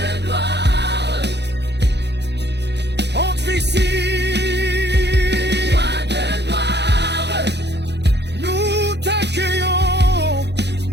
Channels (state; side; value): late; left; 0.50 ms